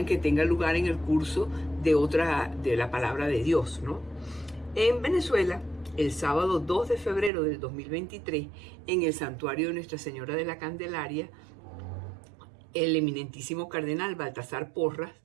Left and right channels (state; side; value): drops out; left; at 7.3 s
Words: que tenga lugar en el curso de la palabra de Dios, ¿no? En Venezuela, el sábado 2 de febrero del 2023, en el santuario de Nuestra Señora de la Candelaria, el eminentísimo cardenal Baltasar Porras,